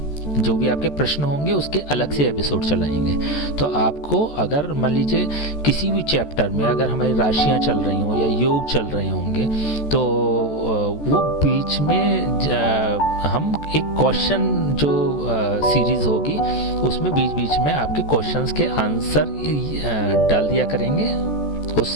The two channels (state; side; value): late; right; 14 ms